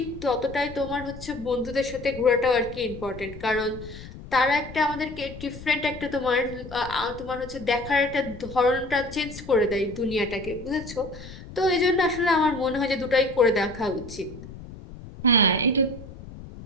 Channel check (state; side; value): noise; left; rumble, 14 dB below the sound